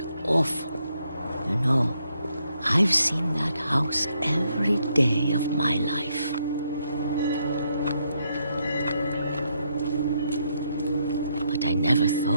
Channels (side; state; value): both; inverted; correlation -0.76